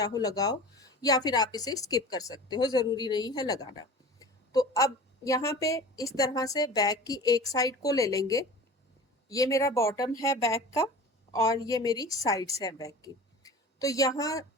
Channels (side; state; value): both; normal; correlation 0.38